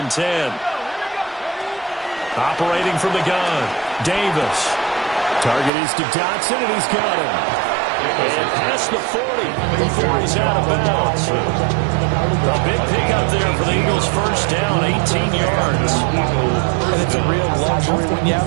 10. Operating from the gun, Davis. Target is to Dotson, and he's got him. And past the 40 before he's out of bounds. A big pickup there for the Eagles' first down, 18 yards. And it's a real luxury when you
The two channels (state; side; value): drops out; left; at 5.7 s